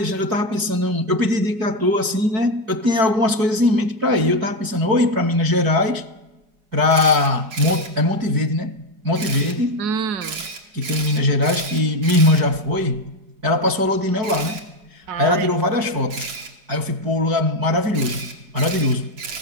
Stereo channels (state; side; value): late; left; 4.8 ms